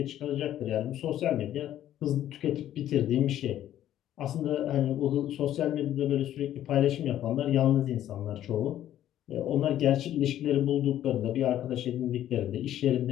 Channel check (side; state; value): right; quieter; 12.0 dB